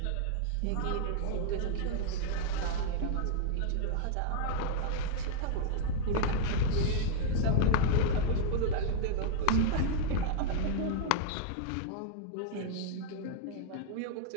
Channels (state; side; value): different; both; correlation -0.01